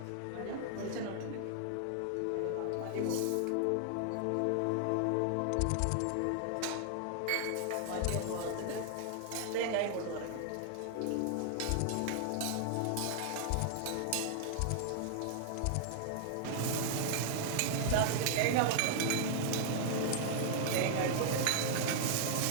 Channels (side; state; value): both; different; correlation 0.00